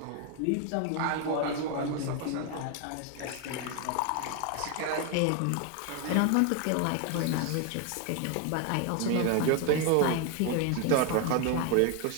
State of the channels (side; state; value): both; different; correlation 0.01